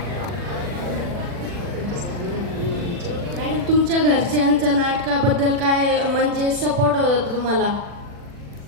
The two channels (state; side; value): late; left; 40 ms